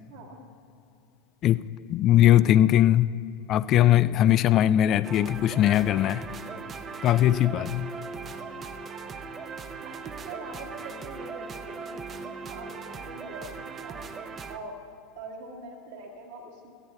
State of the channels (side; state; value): right; quieter; 10.8 dB